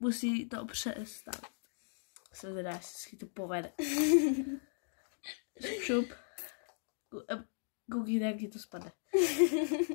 to přestat. Jsem teda, jestli to povede. Šup. Koukejte, jak ti to spadne.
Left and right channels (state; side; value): silent; right; digital silence